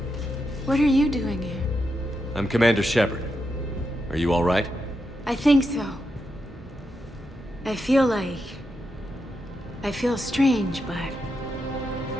What are you doing here? I'm Commander Shepard. Are you all right? I think so. I feel strange, but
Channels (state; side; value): normal; both; correlation 0.85